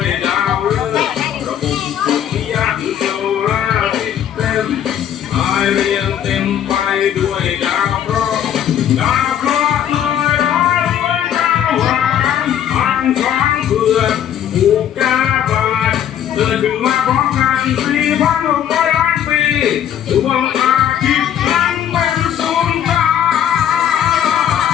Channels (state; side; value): quieter; right; 10.0 dB